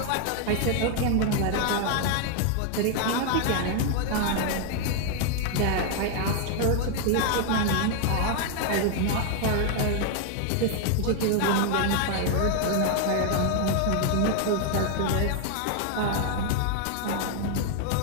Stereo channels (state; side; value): different; both; correlation 0.00